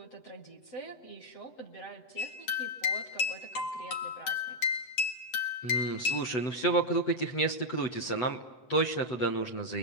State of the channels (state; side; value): late; right; 8.6 ms